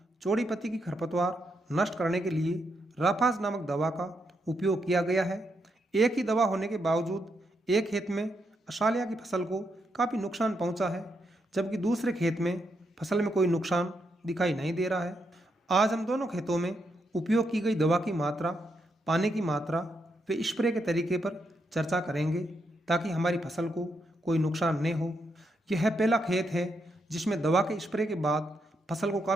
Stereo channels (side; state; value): both; normal; correlation 0.80